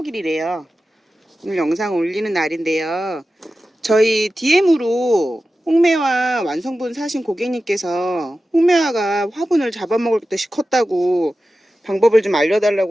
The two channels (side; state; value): both; normal; correlation 0.94